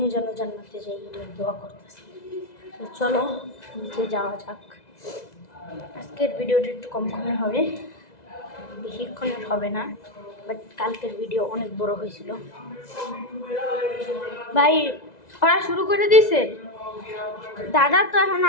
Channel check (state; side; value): late; right; 2.0 ms